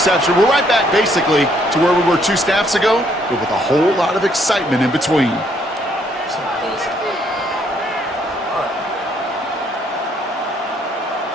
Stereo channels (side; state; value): both; normal; correlation 0.68